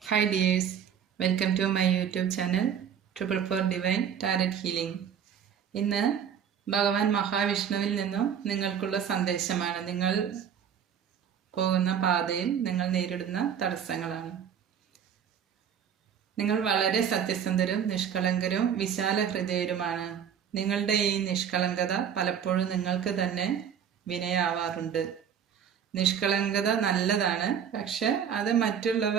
Hi dears, welcome to my YouTube channel Triple Four Divine Tarot Healing. ഇന്ന് ഭഗവാൻ മഹാവിഷ്ണുവിൽ നിന്നും നിങ്ങൾക്കുള്ള സന്ദേശമാണ്. നിങ്ങൾ പോകുന്ന പാതയിൽ നിങ്ങൾ നേരിടുന്ന തടസ്സങ്ങളാണ്. നിങ്ങൾ വളരെ സത്യസന്ധരും നിഷ്കളങ്കരും വിശാല ഹൃദയരുമാണ്. നിങ്ങളുടെ ഈ നിഷ്കളങ്കത പലപ്പോഴും നിങ്ങൾക്ക് തന്നെ വിനയാവാറുണ്ട്. നിഷ്കളങ്കത നല്ലതാണ്, പക്ഷെ അത്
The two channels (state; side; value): quieter; left; 8.2 dB